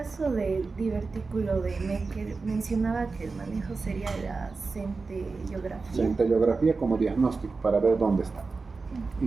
del divertículo de Meckel, mencionaba que el manejo sería la centellografía. Centellografía como diagnóstico para ver dónde está.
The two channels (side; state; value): left; quieter; 4.2 dB